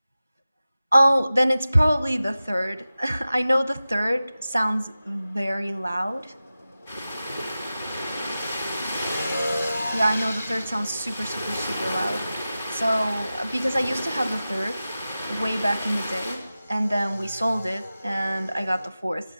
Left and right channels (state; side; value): inverted; both; correlation -0.94